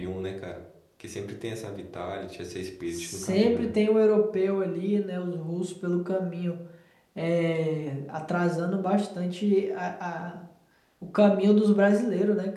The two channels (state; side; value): identical; both; correlation 1.00